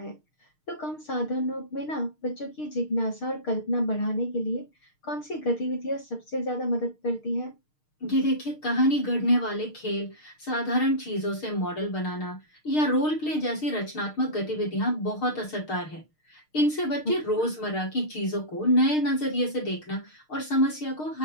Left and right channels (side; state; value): right; late; 6.5 ms